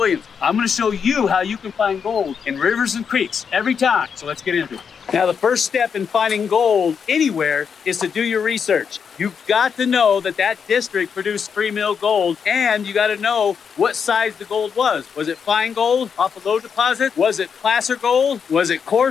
I'm going to show you how you can find gold in rivers and creeks every time. So let's get into it. Now, the first step in finding gold anywhere is to do your research. You've got to know that that district produced free mill gold, and you got to know what size the gold was. Was it fine gold off a low deposit? Was it placer gold? Was it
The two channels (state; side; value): quieter; right; 6.6 dB